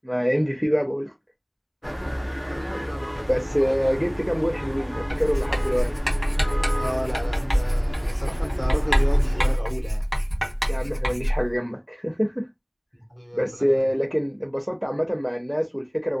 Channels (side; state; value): both; identical; correlation 1.00